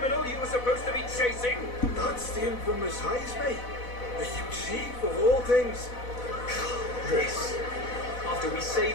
you were supposed to be chasing? That's the infamous Heismay. The huge chief of all things. This, after we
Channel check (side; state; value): right; late; 4.1 ms